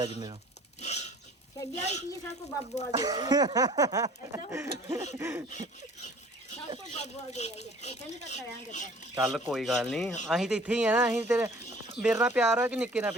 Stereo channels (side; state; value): both; normal; correlation 0.51